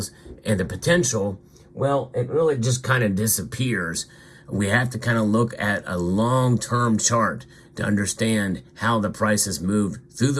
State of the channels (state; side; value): identical; both; correlation 1.00